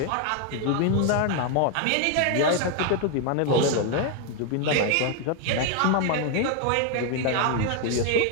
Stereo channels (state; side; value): different; both; correlation 0.01